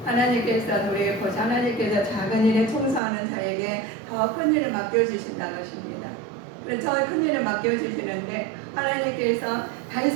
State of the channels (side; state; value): left; drops out; at 3.0 s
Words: 하나님께서 작은 일에 충성하는 자에게 더 큰 일을 맡겨주신다는 것입니다. 그래서 더 큰 일을 맡겨주시는데 하나님께서